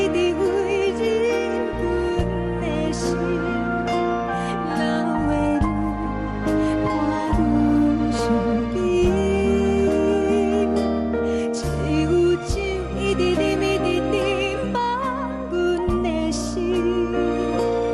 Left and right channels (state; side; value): identical; both; correlation 1.00